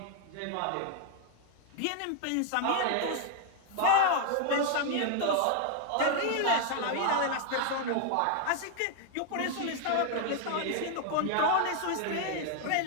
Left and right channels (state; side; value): different; both; correlation 0.00